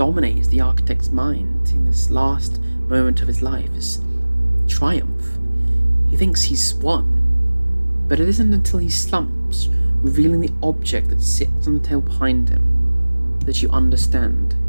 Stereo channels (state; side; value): inverted; both; correlation -1.00